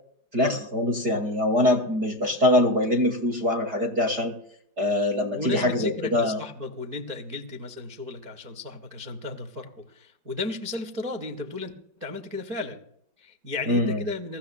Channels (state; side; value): late; left; 4.9 ms